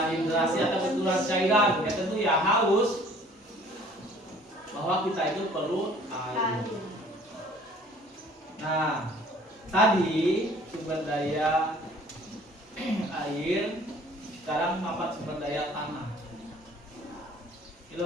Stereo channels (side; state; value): both; normal; correlation 0.53